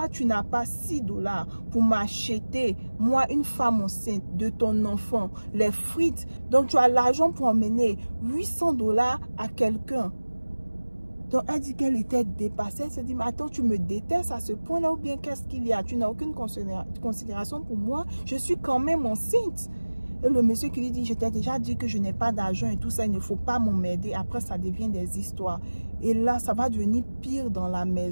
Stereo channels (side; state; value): both; inverted; correlation -1.00